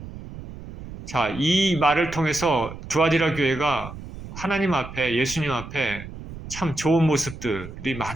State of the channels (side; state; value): right; noise; rumble, 13 dB below the sound